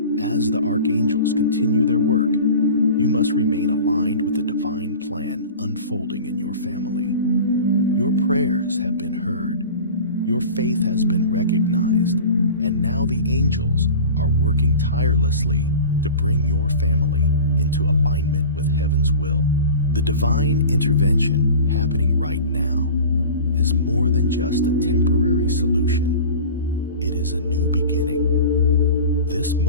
As the archangels continue their work, you must remain aligned with the divine plan unfolding in your family. Your prayers have been heard, your faith has been recognized, and now the angels are working tirelessly to bring your family into alignment with heaven's will. The divine intervention happening right now is more than just a temporary solution. It is a new beginning. This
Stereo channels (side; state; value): both; inverted; correlation -0.37